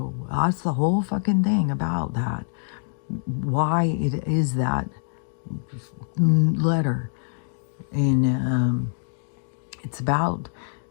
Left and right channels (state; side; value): silent; right; digital silence